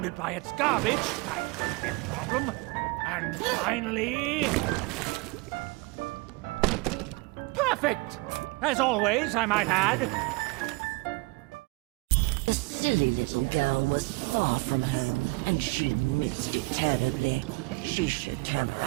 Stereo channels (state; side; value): quieter; left; 25.5 dB